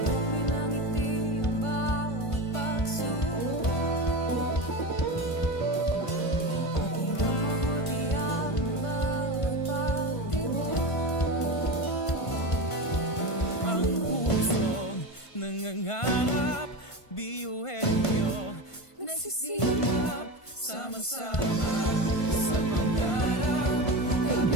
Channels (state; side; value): late; right; 1.5 ms